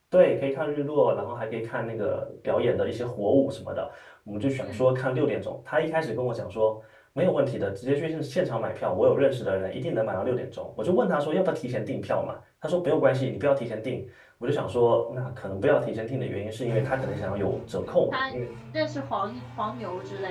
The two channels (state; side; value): identical; both; correlation 1.00